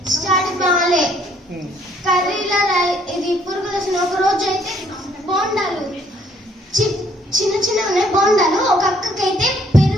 స్టడీ బాగాలే, కర్రీలో ఇది పురుగులు వచ్చిన. ఒక రోజు అయితే బోండాలు చిన్న చిన్న ఉన్నాయి బోండాలు. ఒక అక్కకైతే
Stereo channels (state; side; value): normal; both; correlation 0.64